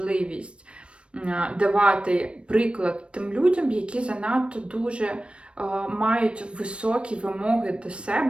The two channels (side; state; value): left; late; 0.059 ms